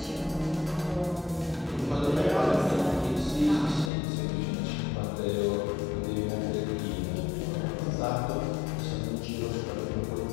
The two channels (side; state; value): right; drops out; at 3.9 s